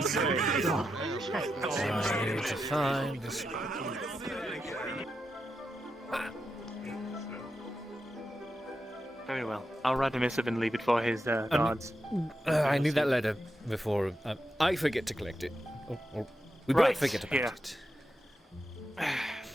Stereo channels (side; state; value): both; normal; correlation 0.87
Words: need to find this. Very well. I'll write a missive and leave it for his guards. I need that letter before I forget to collect it. Or we both forget about it.